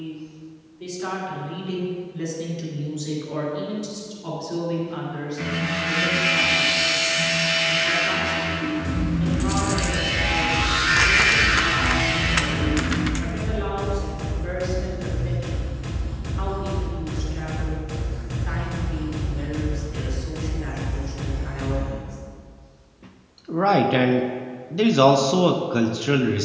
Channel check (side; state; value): both; identical; correlation 1.00